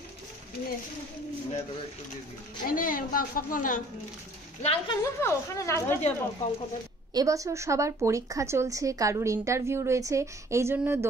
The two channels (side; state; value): both; normal; correlation 0.54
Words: এবছর সবার পরীক্ষা চলছে, কারুর ইন্টারভিউ রয়েছে, এই জন্য